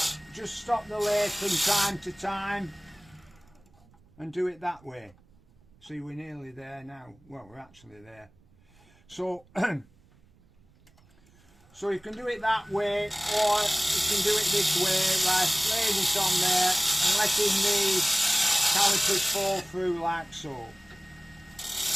just stop the lathe from time to time and do it that way. See, we're nearly there now. Well, we're actually there. So so you can do it that way, or you can do it this way, like laying it on there and letting the calipers fall through like so.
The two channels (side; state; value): right; noise; rumble, 29 dB below the sound